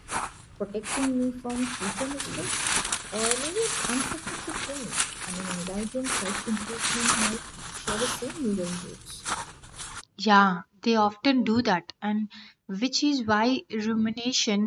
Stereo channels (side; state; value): both; identical; correlation 1.00